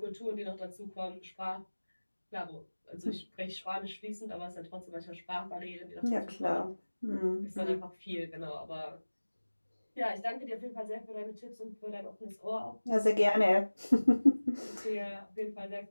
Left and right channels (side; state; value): both; inverted; correlation -1.00